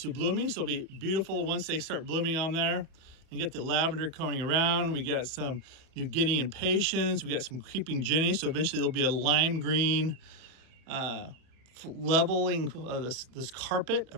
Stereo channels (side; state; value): left; late; 31 ms